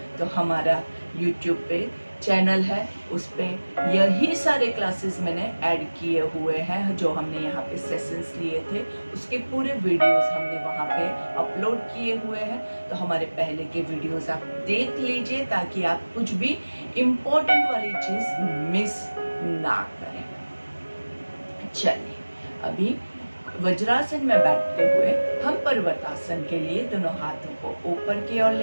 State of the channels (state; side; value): inverted; both; correlation -1.00